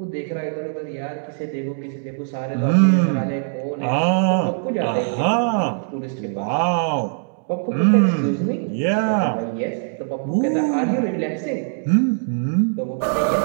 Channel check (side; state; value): left; silent; digital silence